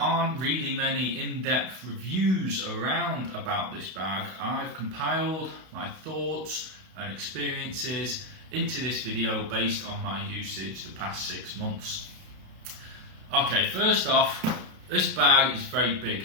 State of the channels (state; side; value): late; left; 32 ms